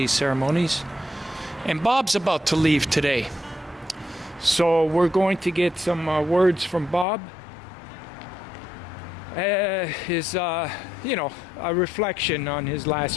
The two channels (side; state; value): right; drops out; at 7.1 s